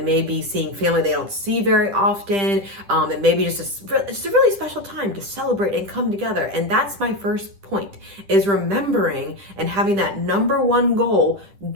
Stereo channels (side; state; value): left; late; 10 ms